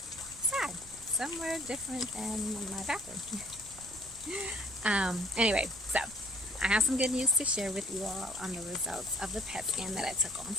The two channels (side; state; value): right; noise; rumble, 20 dB below the sound